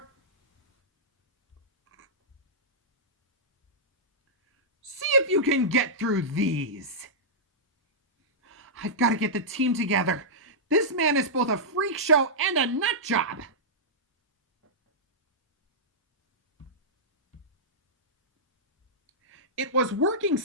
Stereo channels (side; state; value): both; normal; correlation -0.12